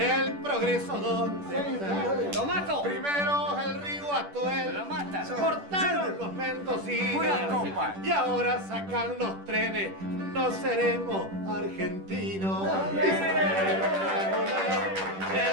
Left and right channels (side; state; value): left; late; 10 ms